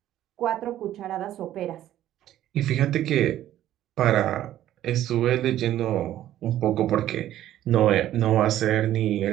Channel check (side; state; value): left; quieter; 12.7 dB